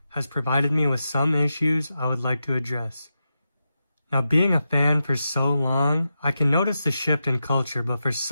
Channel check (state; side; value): inverted; both; correlation -0.89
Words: has provided me with some issues I would like to address. Now, being a fan for so long, I can notice the shift in culture, but for